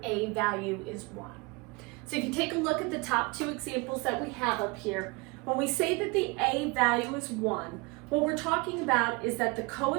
a value is 1. So if you take a look at the top two examples that we have up here, when we say that the a value is 1, what we're talking about is that the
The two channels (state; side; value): quieter; left; 26.9 dB